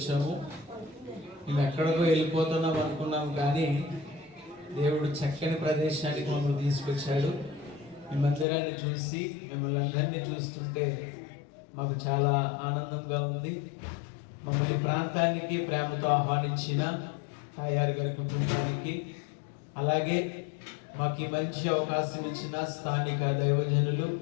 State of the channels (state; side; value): drops out; right; at 8.5 s